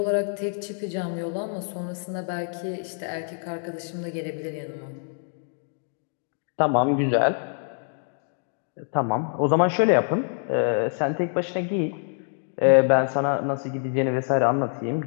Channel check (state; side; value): silent; right; 58 dB below the other